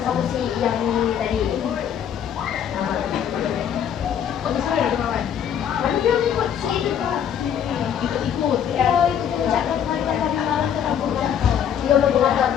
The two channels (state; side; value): quieter; right; 8.9 dB